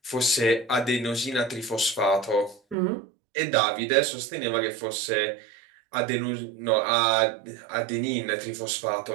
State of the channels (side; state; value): left; drops out; at 2.8 s